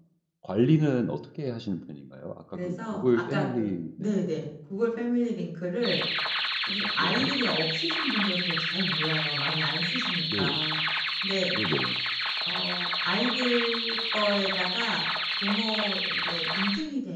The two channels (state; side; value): identical; both; correlation 1.00